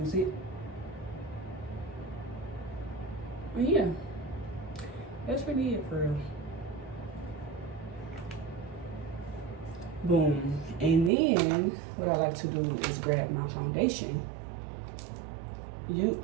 it. But yeah, that's really it for real. Boom. And then what I like to do is grab my foundation.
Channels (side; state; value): left; drops out; at 11.1 s